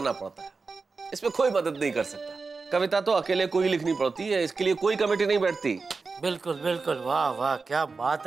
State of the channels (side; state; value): left; quieter; 4.4 dB